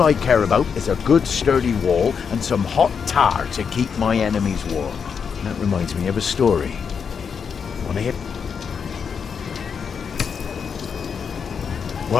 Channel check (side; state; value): right; quieter; 6.5 dB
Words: I care about is a good sturdy wall and some hot tar to keep my enemies warm. And that reminds me of a story. Wanna hear?